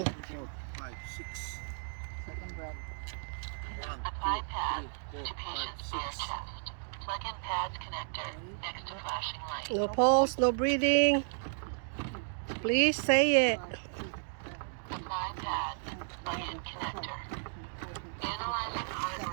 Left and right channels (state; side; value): silent; left; digital silence